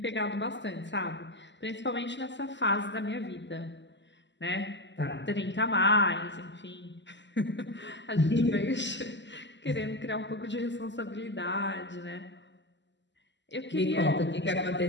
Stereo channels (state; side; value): late; right; 0.53 ms